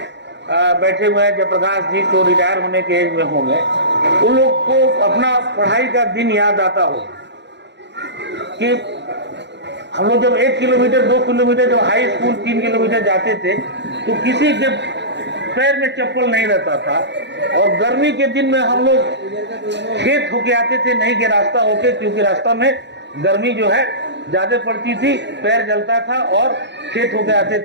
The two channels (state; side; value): late; left; 0.51 ms